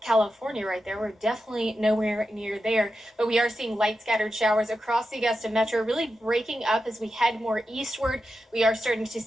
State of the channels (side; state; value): both; normal; correlation 0.90